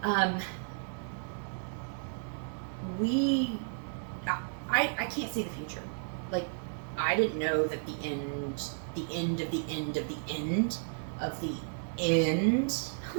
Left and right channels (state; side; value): silent; left; digital silence